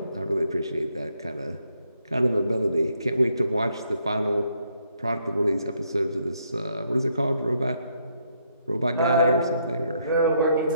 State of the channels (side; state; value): both; inverted; correlation -0.73